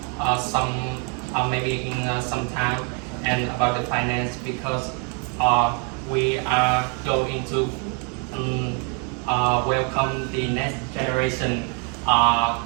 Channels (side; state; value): left; quieter; 35.4 dB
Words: some maybe in some time. And about the finance, because we are going to welcome the next generation